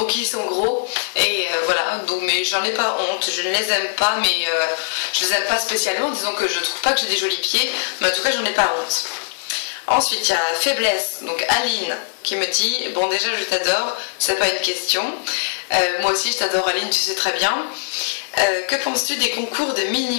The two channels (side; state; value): right; silent; digital silence